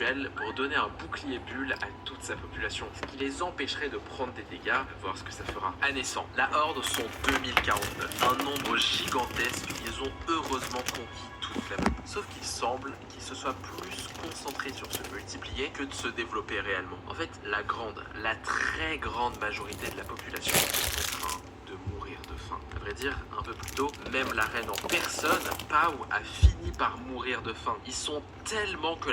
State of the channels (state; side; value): identical; both; correlation 1.00